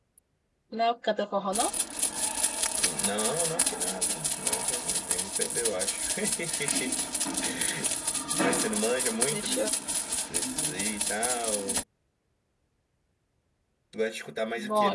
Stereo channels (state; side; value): identical; both; correlation 1.00